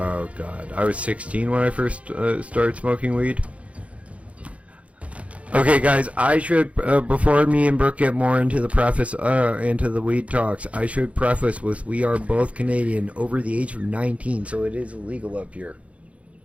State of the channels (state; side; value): late; left; 0.064 ms